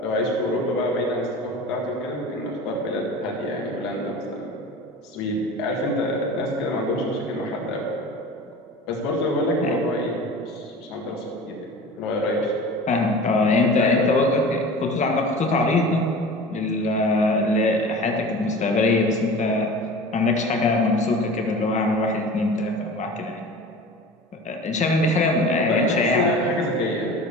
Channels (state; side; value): normal; both; correlation 0.37